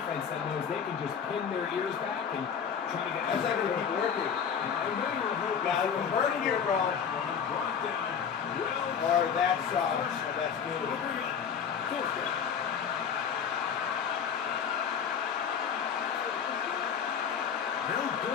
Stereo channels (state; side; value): quieter; right; 7.2 dB